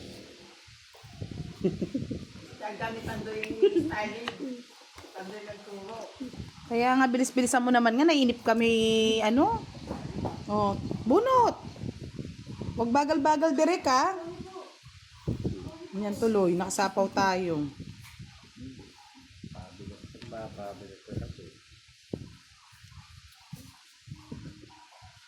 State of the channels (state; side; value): identical; both; correlation 1.00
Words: Gamit Pandoy yung styling. Pandoy nagturo. Kaya nga, bilis-bilisan mo naman nga, nainip kami, ano? Oh, bunot. Huwag bagal-bagal, Derek, ha? Yan tuloy, nakasapaw tayo. Pabigat ko kasi.